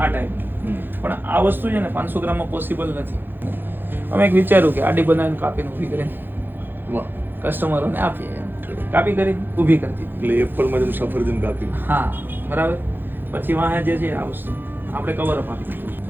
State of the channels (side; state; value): left; late; 0.096 ms